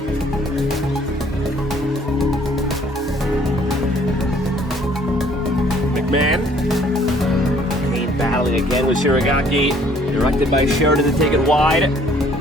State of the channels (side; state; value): both; normal; correlation 0.59